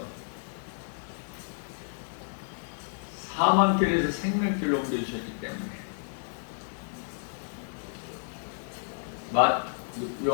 사망길에서 생명길로 옮겨주셨기 때문에.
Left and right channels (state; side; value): silent; right; digital silence